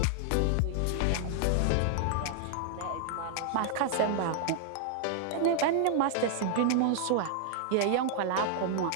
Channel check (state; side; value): different; both; correlation 0.00